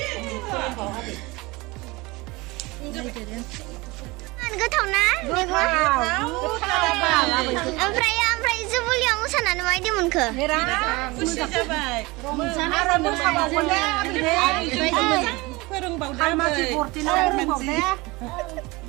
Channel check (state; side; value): quieter; left; 23.1 dB